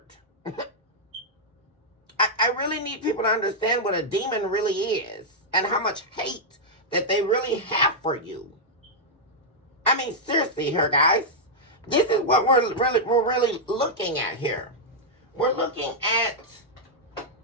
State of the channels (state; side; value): normal; both; correlation -0.06